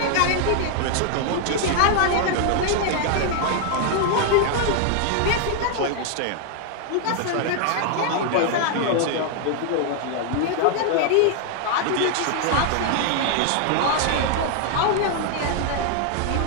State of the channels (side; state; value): both; different; correlation 0.00